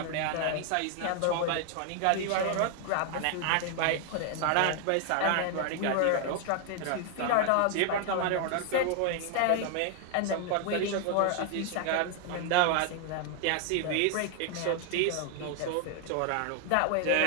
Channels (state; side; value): different; both; correlation 0.00